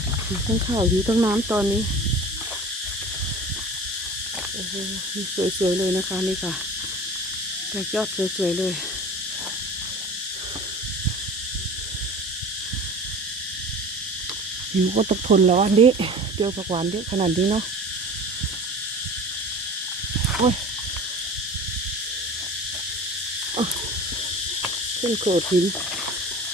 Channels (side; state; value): both; normal; correlation 0.39